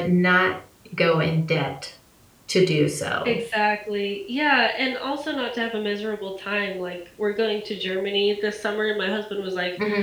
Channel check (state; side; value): identical; both; correlation 1.00